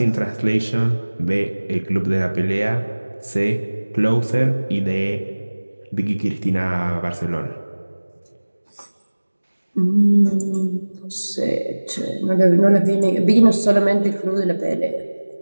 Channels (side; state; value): both; inverted; correlation -1.00